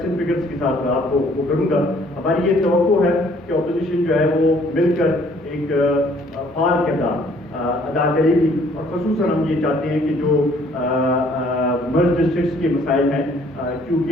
اینڈ فگرس کے ساتھ آپ کو وہ کروں گا. ہماری یہ توقع ہے کہ اپوزیشن جو ہے وہ مل کر ایک فعال کردار ادا کرے گی. اور خصوصاً ہم یہ چاہتے ہیں کہ جو مرج ڈسٹرکٹس کے مسائل ہیں،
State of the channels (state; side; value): normal; both; correlation 0.60